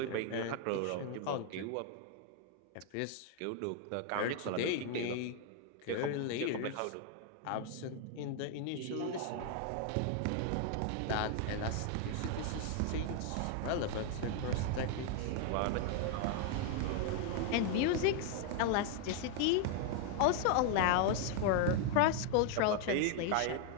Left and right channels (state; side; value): different; both; correlation 0.00